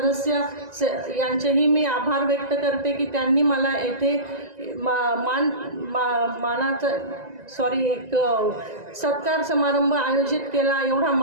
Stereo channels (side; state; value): left; late; 1.9 ms